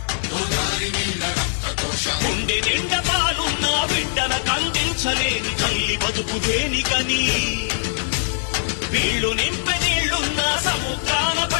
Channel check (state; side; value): silent; right; digital silence